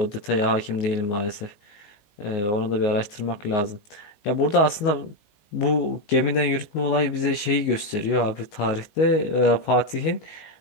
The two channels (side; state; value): right; late; 19 ms